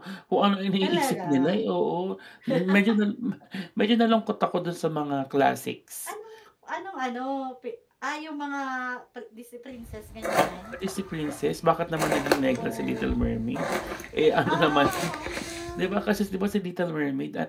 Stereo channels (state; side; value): identical; both; correlation 1.00